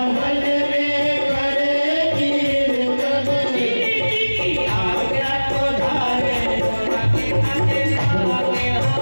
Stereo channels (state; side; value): inverted; both; correlation -1.00